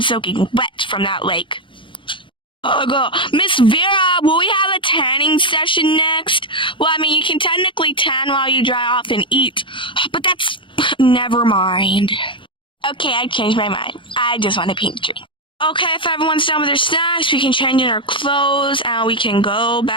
soaking wet from that lake. Miss Vera, will we have a tanning session next? Well, I mean, you can technically tan while you dry off and eat, but that's... Never mind. Okay, I changed my mind. I just want a pink drink. Okay, if everyone's done with their snacks, we can change in our clothes and we can go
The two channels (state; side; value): late; right; 0.24 ms